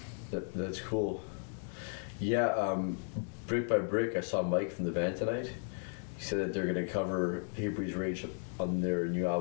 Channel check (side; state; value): right; silent; 54 dB below the other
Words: that's cool. Yeah. Brick by Brick, I saw Mike from the band tonight. He said that they're gonna cover Hatebreeds Rage on their new